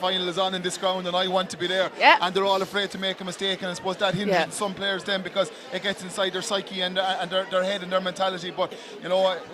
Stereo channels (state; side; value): identical; both; correlation 1.00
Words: is on in this ground, and I want to be there. And they're all afraid to make a mistake, and I suppose that hinders some players then, because it gets inside their psyche and their head and their mentality. But you know,